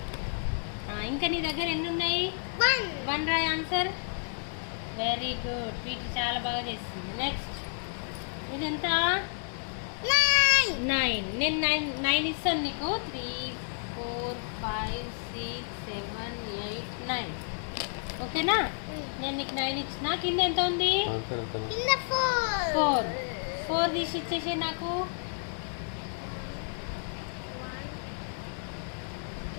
ఇంకా నీ దగ్గర ఎన్ని ఉన్నాయి? 1 రాయ్ ఆన్సర్. Very good. వీటి చాలా బాగా చేస్తుంది. నెక్స్ట్ ఇది ఎంత? 9. నేను 9 ఇస్తాను నీకు. 3 4 5 6 7 8 9. ఓకేనా? నేను నీకు 9 ఇచ్చిన. కింద ఎంత ఉంది? 4 తీసి ఇచ్చేసే నాకు.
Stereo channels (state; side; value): silent; right; 57 dB below the other